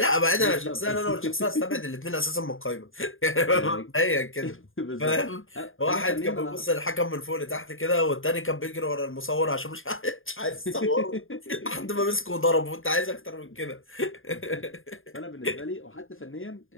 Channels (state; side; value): late; right; 0.59 ms